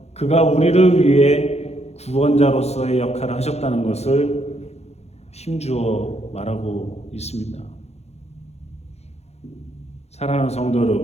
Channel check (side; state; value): right; late; 0.31 ms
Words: 그가 우리를 위해 구원자로서의 역할을 하셨다는 것을 힘주어 말하고 있습니다. 사랑하는 성도